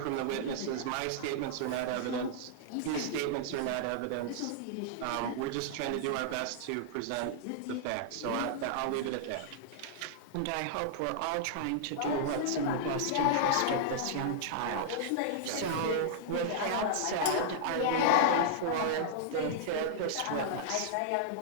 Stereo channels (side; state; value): both; different; correlation -0.01